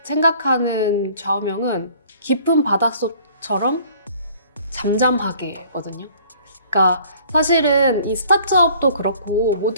생각하는 좌우명은 깊은 바닷속처럼 잠잠하게거든요. 그러니까 사실은 이 스타트업도 그렇고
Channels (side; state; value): both; inverted; correlation -0.54